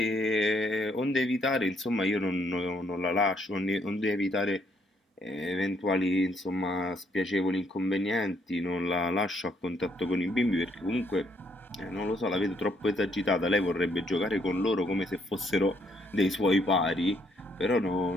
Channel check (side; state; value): both; normal; correlation 0.70